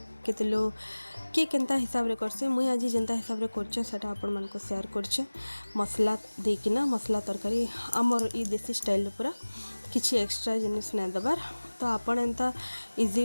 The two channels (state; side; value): inverted; both; correlation -1.00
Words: केते लोग किए केंता हिसाब रे करसे मुई आज जेंता हिसाब रे करछे सेटा आपण मन को शेयर करछे। मसला देकिना मसला तरकारी हमर ई देसी स्टाइल पूरा किछि एक्स्ट्रा जिनिस नै दबार। तो आपण एंता